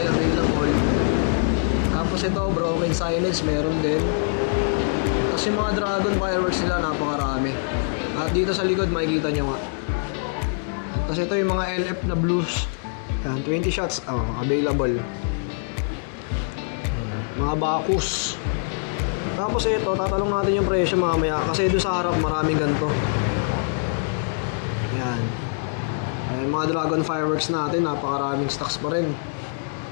available. Tapos ito, Broken Silence, meron din. Tapos yung mga dragon fireworks nila, napakarami. At dito sa likod, makikita nyo nga. Tapos ito yung mga LF na blues. Yan, 20 shots, available. Mga Bacchus. Tapos ito, tatalong natin yung presyo mamaya. Kasi doon sa harap, maraming ganito. Yan. Ayan, mga dragon fireworks natin, napakaraming stocks pa rin.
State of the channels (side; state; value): right; silent; 63 dB below the other